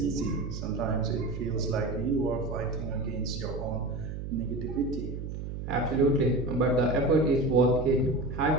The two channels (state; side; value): noise; right; hum, 7 dB below the sound